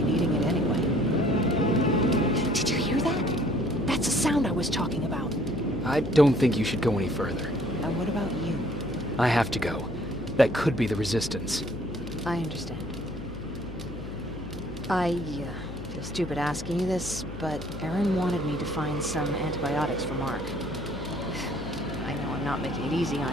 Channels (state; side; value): noise; left; hum, 11 dB below the sound